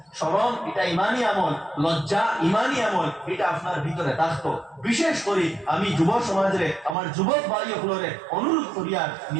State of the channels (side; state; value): left; drops out; at 7.0 s